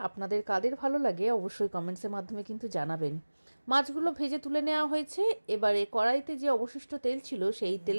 আপনাদের কাদের ভালো লাগে অবশ্যই কমেন্টসের মাধ্যমে কিন্তু জানাবেন। মাছগুলো ভেজে তুলে নেওয়া হয়েছে। এবারে কড়াইতে যে অবশিষ্ট তেল ছিল সেই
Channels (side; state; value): both; inverted; correlation -1.00